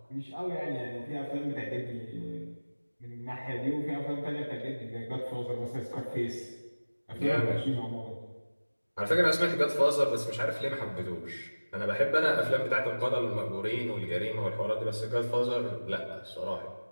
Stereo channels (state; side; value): inverted; both; correlation -1.00